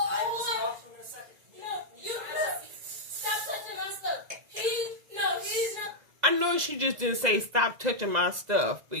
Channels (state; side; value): late; left; 2.0 ms